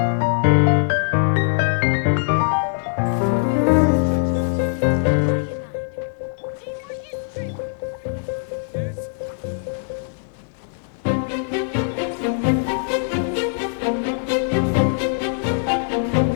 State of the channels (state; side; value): silent; right; digital silence